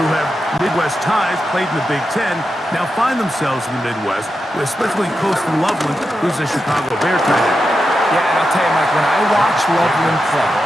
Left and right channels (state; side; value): normal; both; correlation 0.88